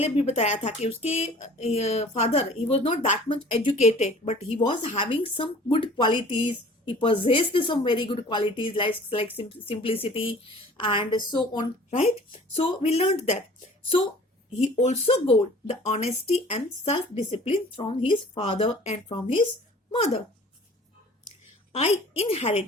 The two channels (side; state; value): both; normal; correlation 0.48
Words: भी बताया था कि उसके father, he was not that much educated, but he was having some good qualities. He possessed some very good qualities like simplicity and so on, right? So we learned that. So he also got the honesty and self-discipline from his father and from his mother. I